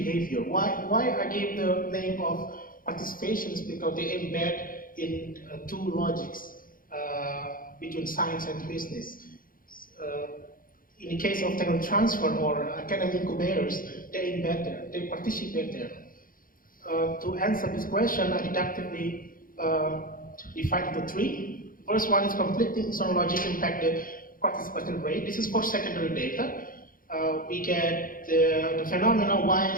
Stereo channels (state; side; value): late; right; 0.41 ms